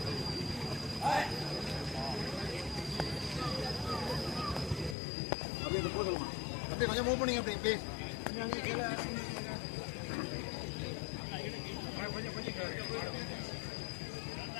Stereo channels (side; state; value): right; drops out; at 5.0 s